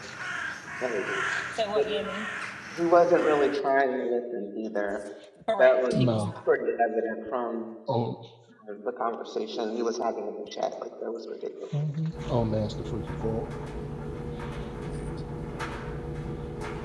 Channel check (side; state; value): both; identical; correlation 1.00